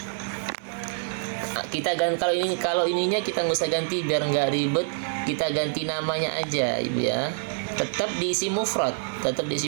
kita ganti, kalau ininya kita nggak usah ganti biar nggak ribet, kita ganti namanya aja, Ibu ya. Tetap diisi mufrad.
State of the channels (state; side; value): silent; left; digital silence